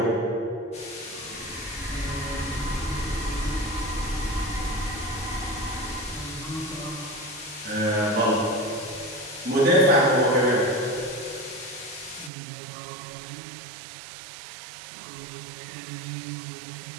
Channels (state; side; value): drops out; left; at 12.3 s